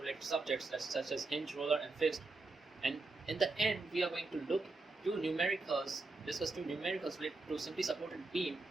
related subjects such as hinge, roller and fixed. And in the end we are going to discuss two numericals related to simply supported beam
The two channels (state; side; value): quieter; left; 3.4 dB